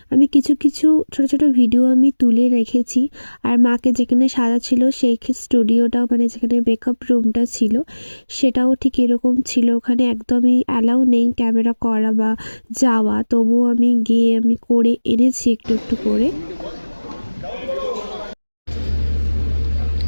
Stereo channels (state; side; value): inverted; both; correlation -1.00